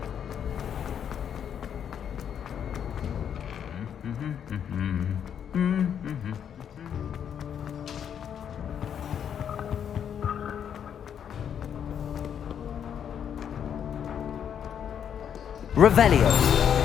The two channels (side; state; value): right; quieter; 8.6 dB